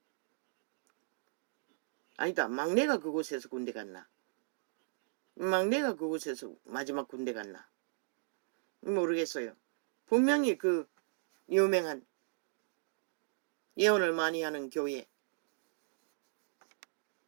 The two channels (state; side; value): silent; left; digital silence